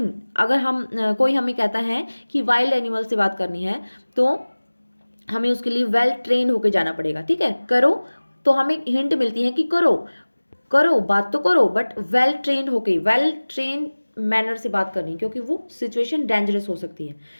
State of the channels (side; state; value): both; inverted; correlation -1.00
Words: अगर हम कोई हमें कहता है कि वाइल्ड एनिमल से बात करनी है तो हमें उसके लिए वेल ट्रेन होके जाना पड़ेगा। ठीक है, करो, तो हमें हिंट मिलती है कि करो करो बात तो करो, बट वेल ट्रेन होके, वेल ट्रेन मैनर से बात करनी, क्योंकि वो सिचुएशन डेंजरस हो सकती है।